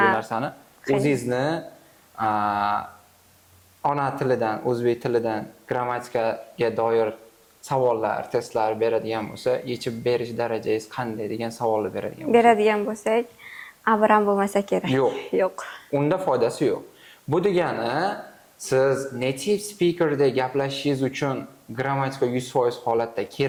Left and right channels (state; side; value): identical; both; correlation 1.00